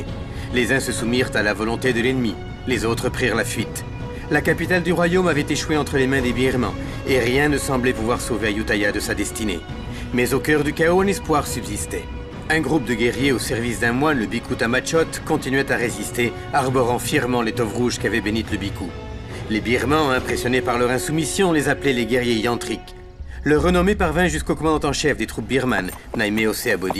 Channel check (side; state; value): both; identical; correlation 1.00